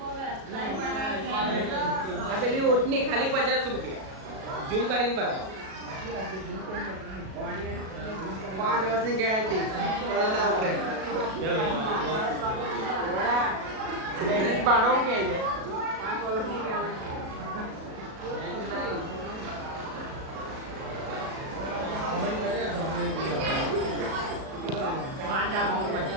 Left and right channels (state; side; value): late; left; 37 ms